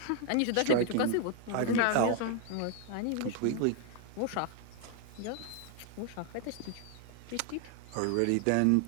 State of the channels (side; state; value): both; different; correlation 0.00